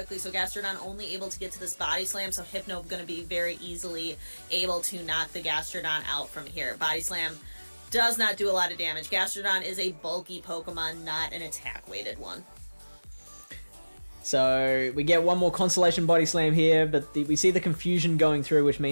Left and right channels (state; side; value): inverted; both; correlation -1.00